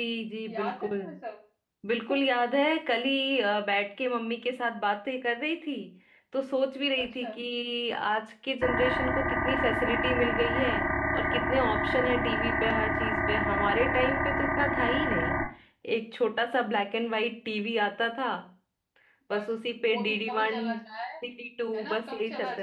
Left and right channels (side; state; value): both; identical; correlation 1.00